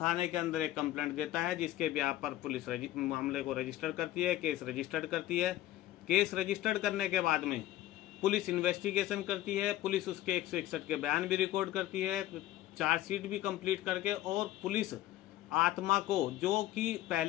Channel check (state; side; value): quieter; right; 14.5 dB